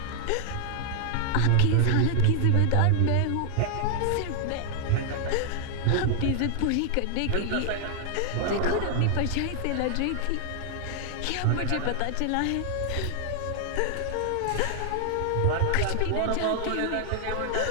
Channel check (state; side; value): different; both; correlation 0.00